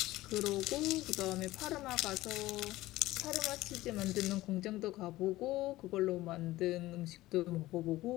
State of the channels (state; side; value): quieter; right; 17.3 dB